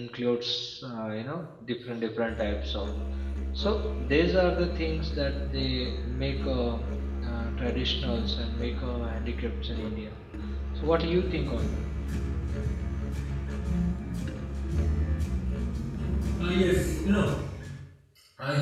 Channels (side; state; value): both; identical; correlation 1.00